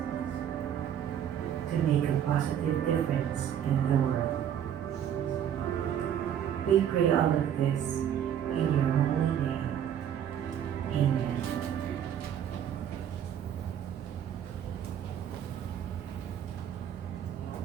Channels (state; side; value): quieter; left; 9.6 dB